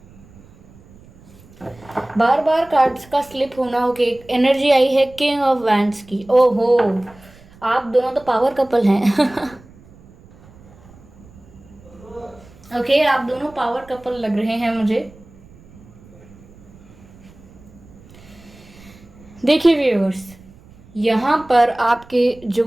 Bar bar cards का स्लिप होना. ओके, एनर्जी आई है किंग ऑफ वैंड्स की. ओहो, आप दोनों तो पावर कपल हैं. ओके, आप दोनों पावर कपल लग रहे हैं मुझे. देखिए व्यूअर्स, यहाँ पर आपके जो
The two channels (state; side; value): noise; right; rumble, 24 dB below the sound